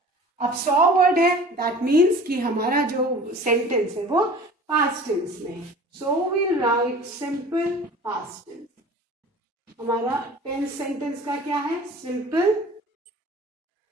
अब saw word है, that means कि हमारा जो sentence है वो past tense में है. So we'll write simple past tense. हमारा tense sentence का क्या है? Simple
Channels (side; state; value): both; normal; correlation 0.43